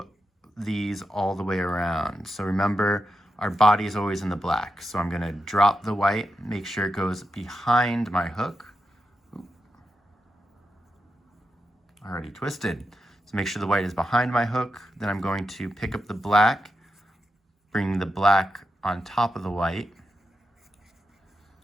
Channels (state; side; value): normal; both; correlation 0.87